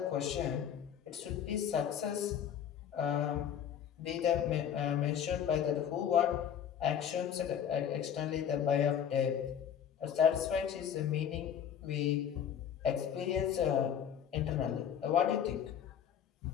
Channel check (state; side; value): quieter; right; 8.8 dB